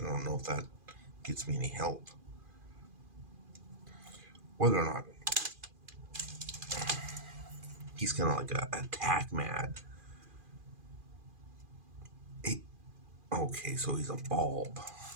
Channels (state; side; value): late; left; 2.4 ms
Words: I don't know if that gets me any help. Whether or not he's kind of like a attack mad. Okay, so he's a bulb.